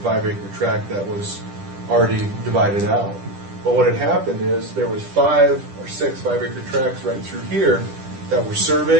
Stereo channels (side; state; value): left; late; 10 ms